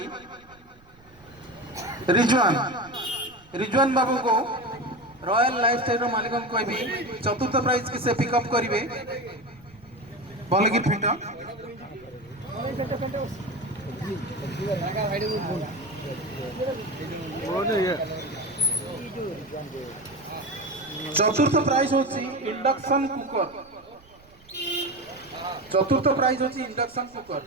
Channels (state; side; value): noise; right; rumble, 27 dB below the sound